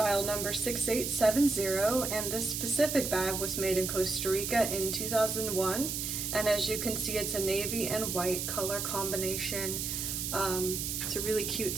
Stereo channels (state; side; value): noise; right; hiss, 2 dB below the sound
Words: number 6870, and this specific bag was made in Costa Rica in 2001. And as you can see, it's a navy and white color combination. It's a really cute